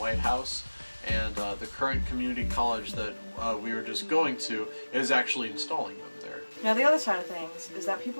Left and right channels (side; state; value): both; inverted; correlation -1.00